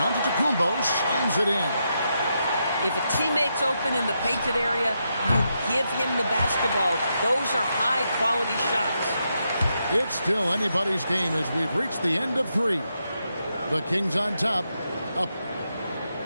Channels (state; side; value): inverted; both; correlation -0.83